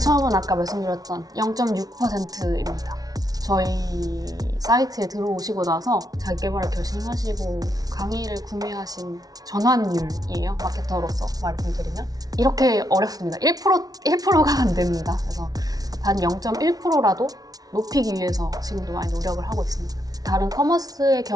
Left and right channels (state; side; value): late; left; 0.18 ms